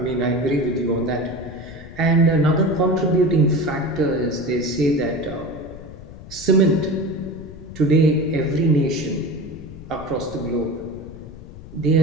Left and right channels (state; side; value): noise; left; rumble, 16 dB below the sound